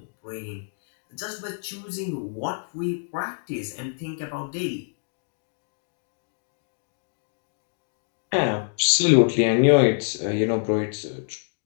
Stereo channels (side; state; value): right; silent; digital silence